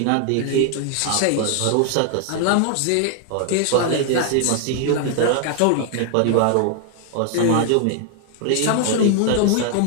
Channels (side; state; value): both; different; correlation 0.00